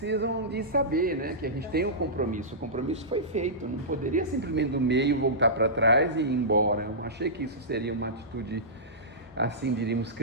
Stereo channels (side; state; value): both; normal; correlation -0.17